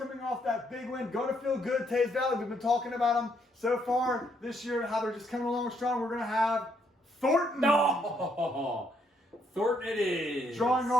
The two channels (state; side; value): normal; both; correlation 0.72